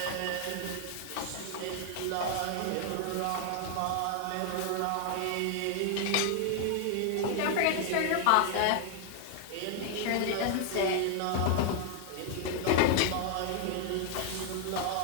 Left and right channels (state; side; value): different; both; correlation 0.00